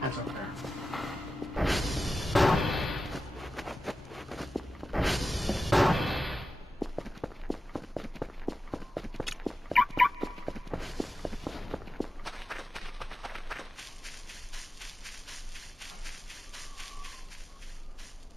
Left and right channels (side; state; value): both; normal; correlation 0.93